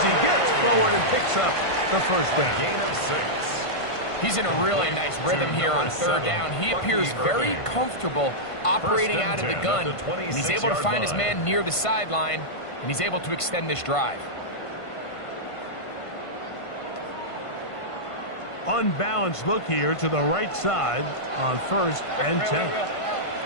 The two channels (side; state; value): right; late; 1.5 ms